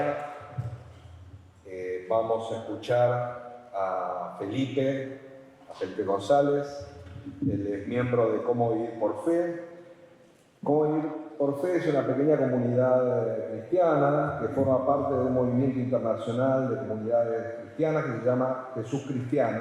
vamos a escuchar a Felipe González. Él es miembro de Cómo Vivir por Fe. Cómo Vivir por Fe es una pequeña comunidad cristiana que forma parte de un movimiento internacional de comunidades cristianas que se llama Jesús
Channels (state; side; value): identical; both; correlation 1.00